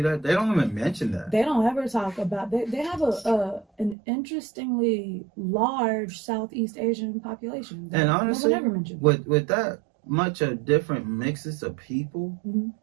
that. They don't even mention that. They don't ever talk about. They have an interestingly large Southeast Asian population. And honestly, no one ever mentioned. With that much of different mixes of people,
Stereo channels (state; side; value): drops out; left; at 4.0 s